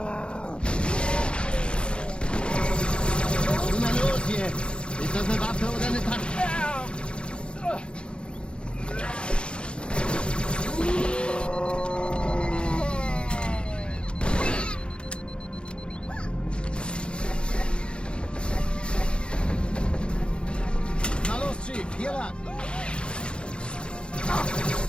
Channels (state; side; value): late; right; 0.055 ms